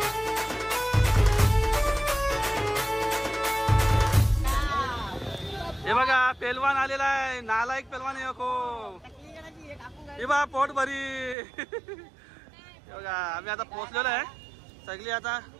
हे बघा, पेलवान आलेला आहे. नालायक पेलवान आहे को. हे बघा, पोट भरी. हे बघा, आम्ही आता पोहोचलेलो आहे सगळी. आता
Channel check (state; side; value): drops out; left; at 11.4 s